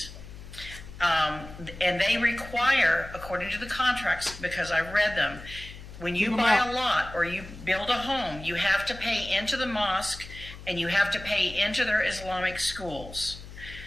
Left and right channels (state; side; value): noise; left; hum, 14 dB below the sound